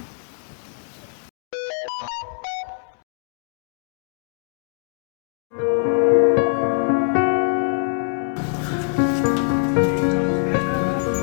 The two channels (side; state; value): right; silent; digital silence